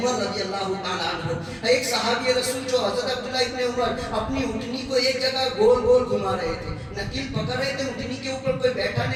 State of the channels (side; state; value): both; identical; correlation 1.00